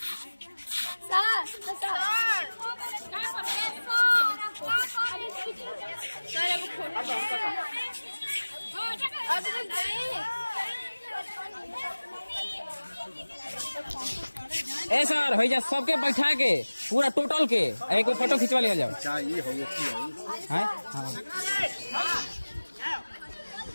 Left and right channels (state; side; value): inverted; both; correlation -1.00